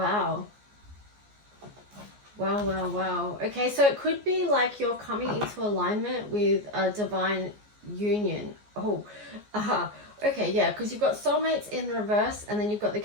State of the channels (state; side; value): late; left; 14 ms